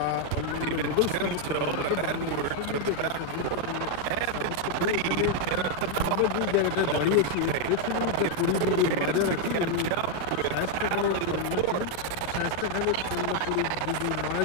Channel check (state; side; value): different; both; correlation 0.00